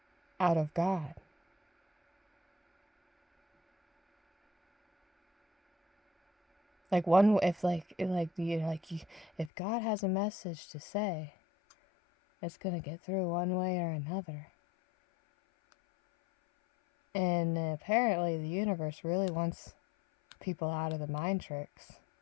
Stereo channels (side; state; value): right; drops out; at 9.5 s